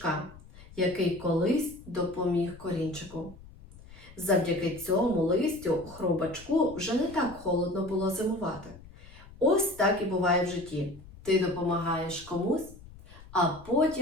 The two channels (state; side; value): noise; left; rumble, 20 dB below the sound